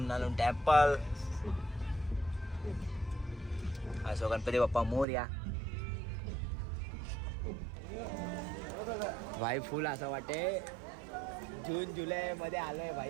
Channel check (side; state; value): left; drops out; at 5.1 s